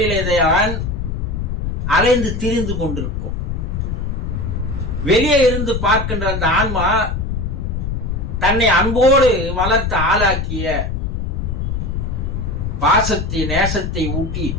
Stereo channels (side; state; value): left; noise; rumble, 2 dB below the sound